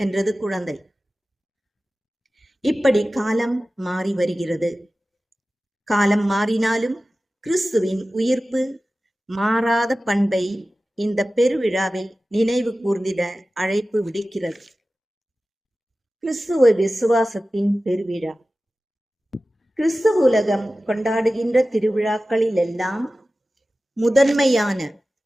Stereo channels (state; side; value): normal; both; correlation 0.95